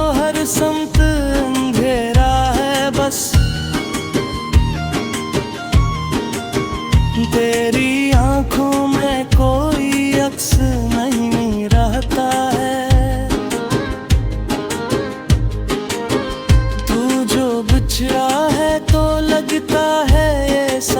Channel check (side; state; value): both; identical; correlation 1.00